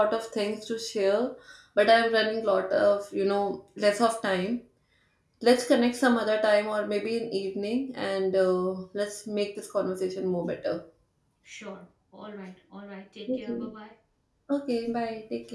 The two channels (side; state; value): both; identical; correlation 1.00